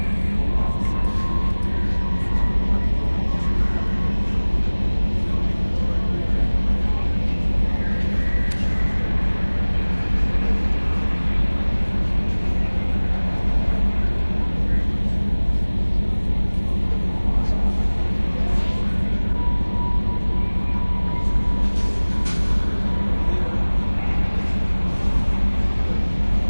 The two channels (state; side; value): inverted; both; correlation -1.00